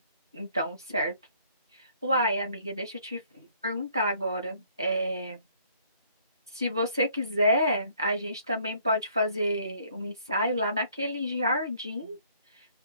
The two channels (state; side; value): inverted; both; correlation -0.62